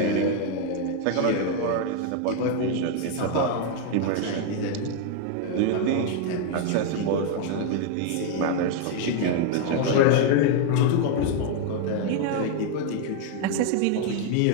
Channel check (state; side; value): different; both; correlation 0.00